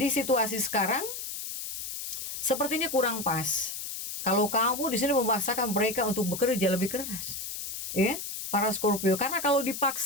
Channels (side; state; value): left; noise; hiss, 6 dB below the sound